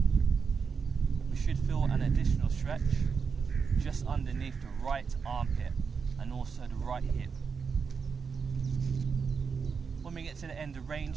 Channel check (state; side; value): quieter; left; 5.7 dB